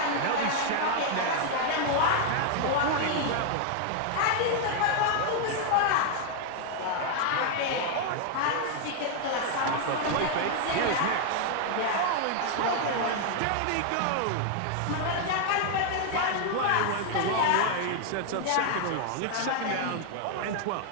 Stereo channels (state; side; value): different; both; correlation 0.00